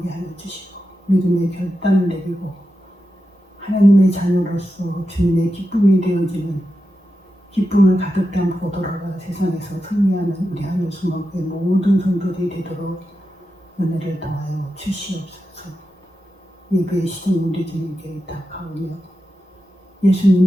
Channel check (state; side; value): normal; both; correlation 0.90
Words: 하여 주시고 믿음의 결단을 내리고 하나님의 자녀로서 주님의 기쁨이 되어지는 기쁨을 가득 담고 돌아가 세상에서 승리하는 우리 하늘수목의 모든 성도들이 되도록 은혜를 더하여 주시옵소서. 예배의 시간 우리 주님께 의탁하오며